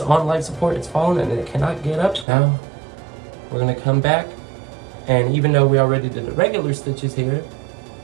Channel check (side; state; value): left; drops out; at 2.2 s